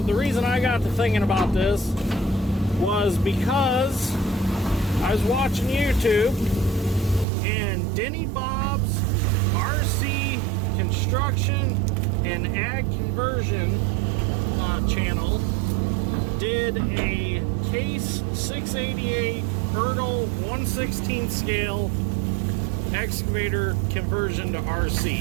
reason I got to thinking about this was because I was watching YouTube, and Denny Bob's RC Construction and Ag Conversion channel did a Case 688 Ertl 1/16 scale excavator conversion to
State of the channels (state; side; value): drops out; left; at 7.2 s